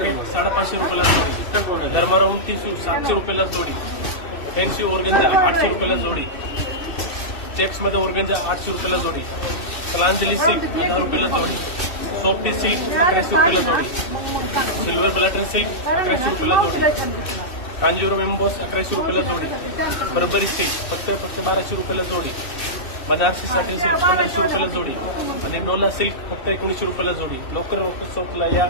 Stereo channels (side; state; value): right; late; 2.6 ms